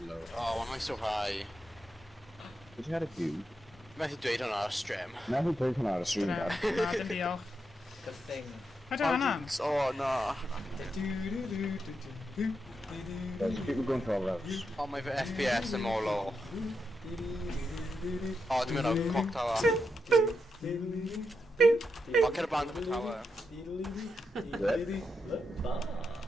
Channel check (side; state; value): both; normal; correlation 0.84